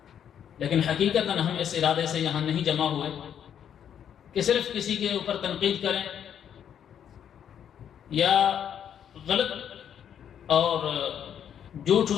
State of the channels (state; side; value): quieter; right; 9.0 dB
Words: لیکن حقیقتاً ہم اس ارادے سے یہاں نہیں جمع ہوئے کہ صرف کسی کے اوپر تنقید کریں یا غلط اور جھوٹ